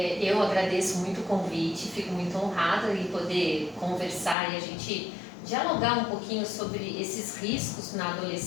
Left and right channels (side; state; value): right; drops out; at 4.4 s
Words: agradeço muito o convite, fico muito honrada em poder conversar e a gente dialogar um pouquinho sobre esses riscos na